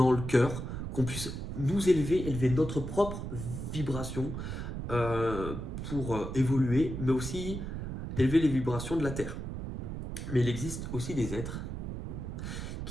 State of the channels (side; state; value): right; noise; rumble, 6 dB below the sound